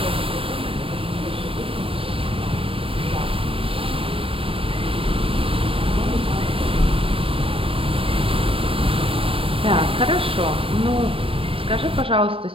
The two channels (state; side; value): late; left; 0.27 ms